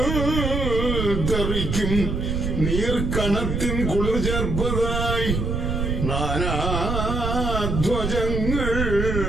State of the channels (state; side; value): noise; right; rumble, 1 dB below the sound